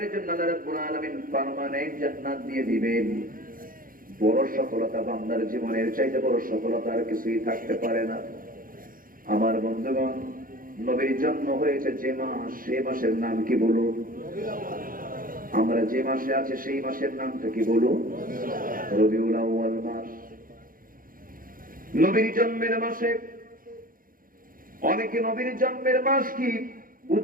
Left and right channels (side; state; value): left; late; 0.41 ms